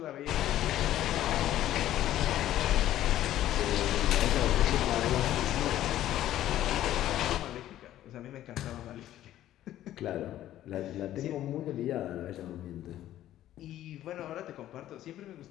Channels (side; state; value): right; quieter; 13.0 dB